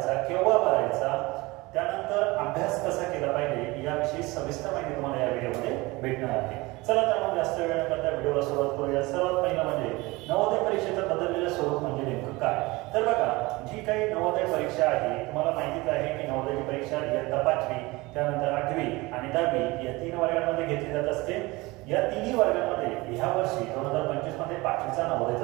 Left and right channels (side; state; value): left; quieter; 22.4 dB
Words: केव्हा भरायचा, त्यानंतर अभ्यास कसा केला पाहिजे याविषयी सविस्तर माहिती तुम्हाला या व्हिडिओमध्ये भेटणार आहे। चला तर मग जास्त वेळ न करता व्हिडिओला सुरुवात करूया। सर्वात पहिलं म्हणजे नवोदय परीक्षेचं बदललेलं स्वरूप म्हणजे नेमकं काय। तर बघा, जी काही नवोदय परीक्षा आहे तुम्हाला माहितीच आहे की नवोदयची परीक्षा इयत्ता 5वी, त्यानंतर 8वी आणि 10वी या 3 वर्गांमध्ये घेतली जात असते। या तिन्ही वर्गांमध्ये ह्या वर्षी 2025 मध्ये 5वीचा नवोदयचा